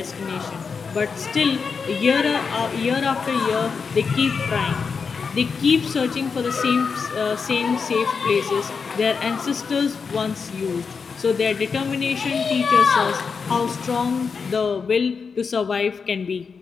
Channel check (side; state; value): right; quieter; 5.5 dB